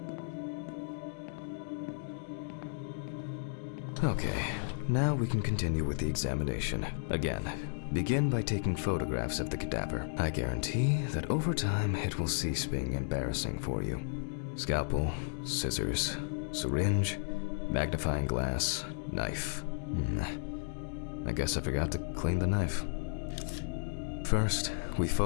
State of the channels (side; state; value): right; silent; digital silence